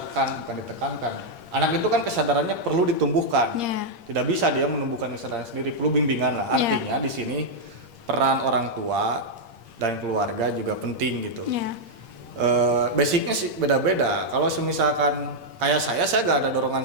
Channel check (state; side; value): late; left; 8.6 ms